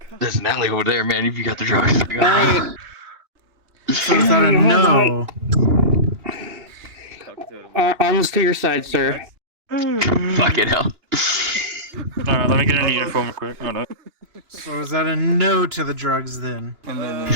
There's an alley over there, man. If you got the drugs. So is that a no? Arms to your side, sir. Fucking hell. Alright, let me get in uniform quick. Hold on. So is that a no to the drugs then? And then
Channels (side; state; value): left; late; 2.9 ms